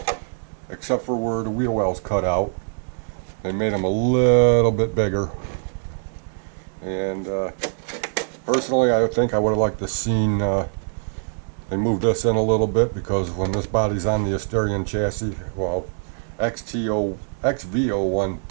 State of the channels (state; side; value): silent; left; digital silence